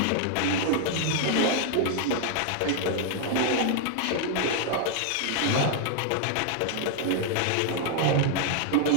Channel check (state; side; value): different; both; correlation 0.00